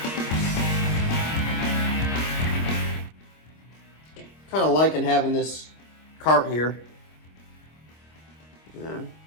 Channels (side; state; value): right; late; 26 ms